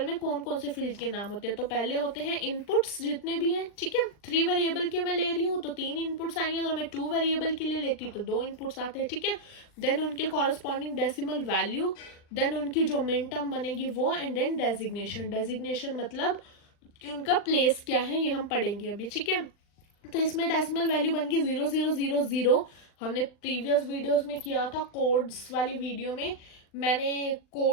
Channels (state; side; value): late; right; 39 ms